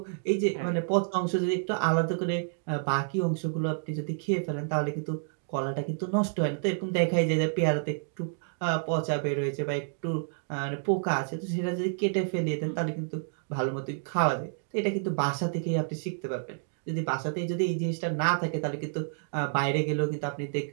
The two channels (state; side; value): silent; left; digital silence